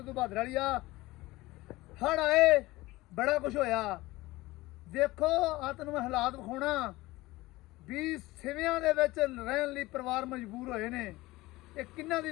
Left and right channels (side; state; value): right; quieter; 19.4 dB